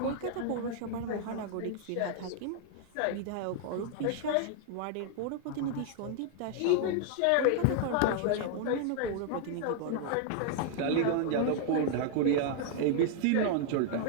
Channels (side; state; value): both; different; correlation 0.00